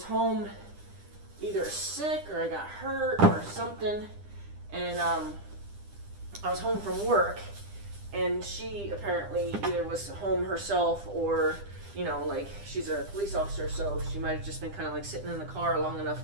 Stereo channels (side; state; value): left; late; 10 ms